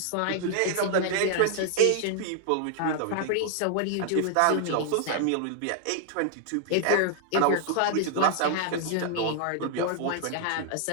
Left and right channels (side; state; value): both; different; correlation 0.00